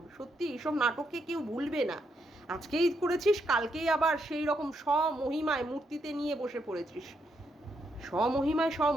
সত্যি এইসব নাটককে কেউ ভুলবে না। আজকেই করেছিস, কালকেই আবার সেই রকম স্বমহিমায় মূর্তিতে নিয়ে বসে পড়েছিস। স্বমহিমায়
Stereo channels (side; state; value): both; normal; correlation 0.79